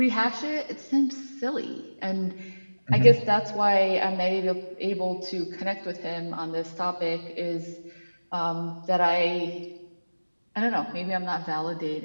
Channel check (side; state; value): both; inverted; correlation -1.00